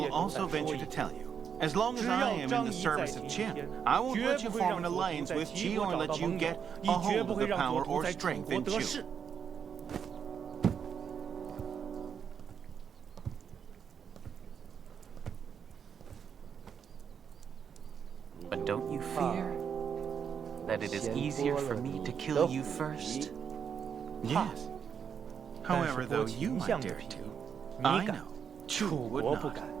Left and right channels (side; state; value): left; quieter; 7.3 dB